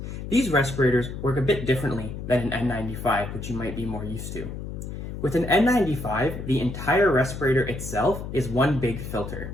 These respirators work a bit differently than an N95, which you might be more used to. With an N95, the entire respirator itself is one big filter.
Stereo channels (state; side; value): noise; left; hum, 8 dB below the sound